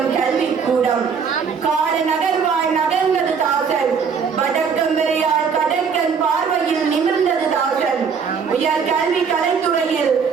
கல்வி கூடம். காடு நகர்வாய் நகர்ந்தது தாசன், வடக்கம் வரையால் கடற்கன் பார்வையில் நிமிர்ந்தது தாசன். உயர் கல்வி கலைத்துறையில்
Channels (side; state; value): left; quieter; 6.1 dB